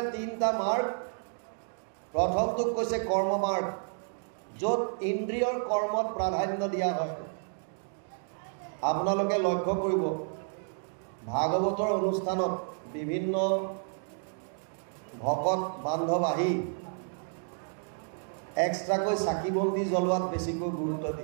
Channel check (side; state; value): left; silent; 57 dB below the other